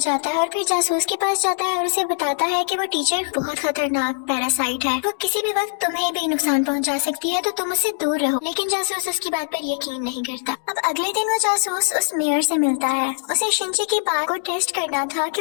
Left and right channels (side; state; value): right; silent; digital silence